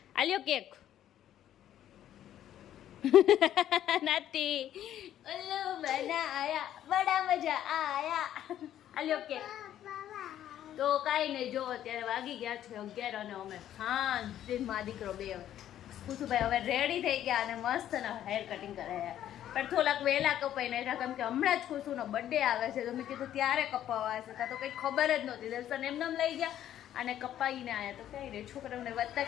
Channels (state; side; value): quieter; right; 11.4 dB